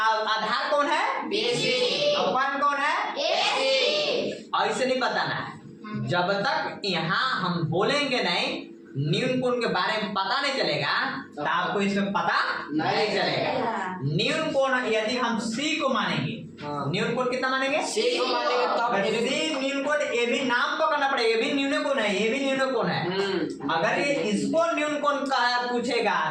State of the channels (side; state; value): both; identical; correlation 1.00